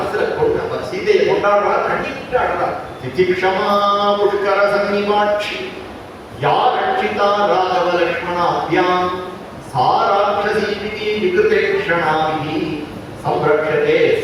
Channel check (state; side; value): identical; both; correlation 1.00